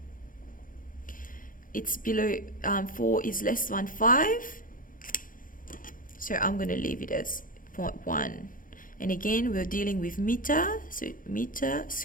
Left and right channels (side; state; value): right; late; 0.40 ms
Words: It's below 4 is less than 5. So I'm going to leave it as 0.1. And again, we're dealing with meter. So meter